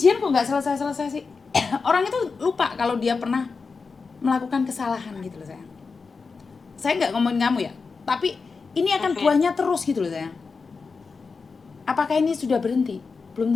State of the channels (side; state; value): right; quieter; 4.7 dB